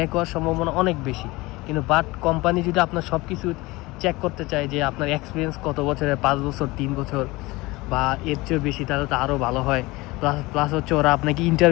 হওয়ার সম্ভাবনা অনেক বেশি। কিন্তু বাট কোম্পানি যদি আপনার সব কিছু চেক করতে চায় যে আপনার এক্সপিরিয়েন্স কত বছরের, 5 বছর 3 বছর বা এর চেয়েও বেশি, তাহলে তো আরও ভালো হয়। প্লাস হচ্ছে ওরা আপনাকে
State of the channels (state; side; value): quieter; right; 21.7 dB